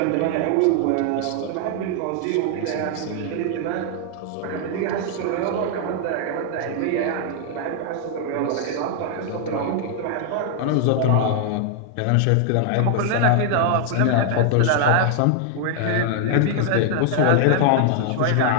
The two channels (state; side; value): different; both; correlation 0.00